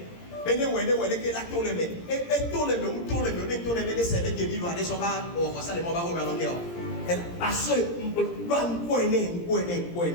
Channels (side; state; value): right; late; 17 ms